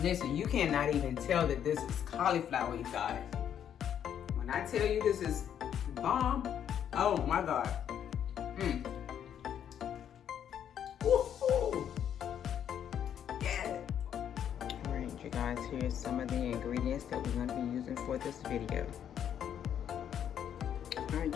Listen, you cannot even tell that this is cauliflower, you guys. When I tell you this is bomb, oh my God. Woohoo! Yeah. Alright, you guys, here's some of the ingredients that we're going to be using for this video.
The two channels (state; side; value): quieter; right; 9.3 dB